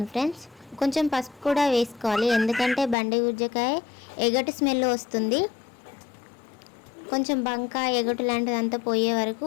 ఫ్రెండ్స్. కొంచెం పసుపు కూడా వేసుకోవాలి, ఎందుకంటే బండి గుజ్జకాయ ఎగటు స్మెల్ వస్తుంది. కొంచెం బంక ఎగటు లాంటిదంతా పోయే వరకు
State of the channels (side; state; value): right; drops out; at 3.0 s